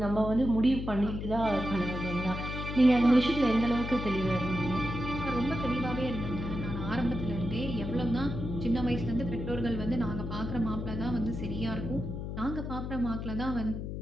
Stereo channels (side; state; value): left; noise; hum, 5 dB below the sound